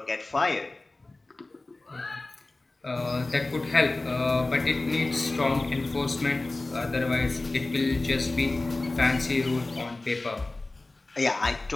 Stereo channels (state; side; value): quieter; right; 3.1 dB